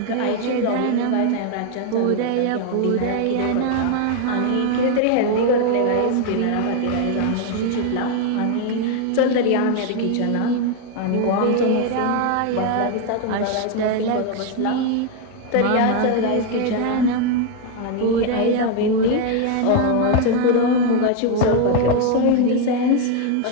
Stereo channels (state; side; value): different; both; correlation 0.01